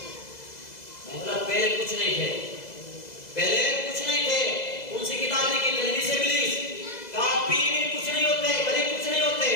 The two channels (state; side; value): late; right; 2.0 ms